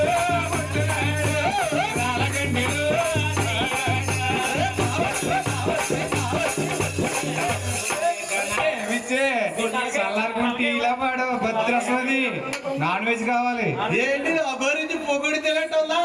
రాళ్ళగంటలు చల్లారుకుంటే ఇలా పాడు భద్రస్వది నాన్ వెజ్ కావాలి ఏంటి అగోరించి పొగుడి తెలియటందా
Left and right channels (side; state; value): both; identical; correlation 1.00